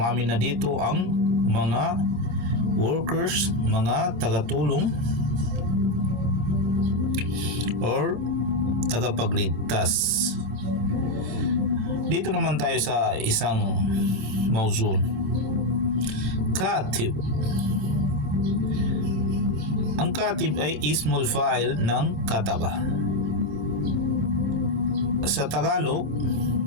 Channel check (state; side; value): late; left; 26 ms